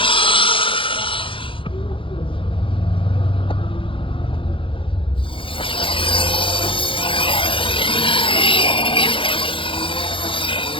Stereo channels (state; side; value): late; right; 0.25 ms